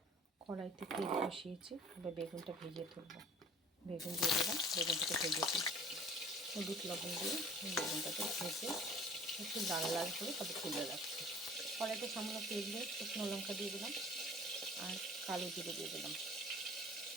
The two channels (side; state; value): both; normal; correlation 0.48